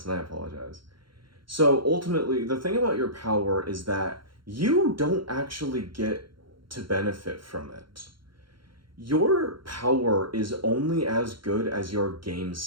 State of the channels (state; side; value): late; left; 0.73 ms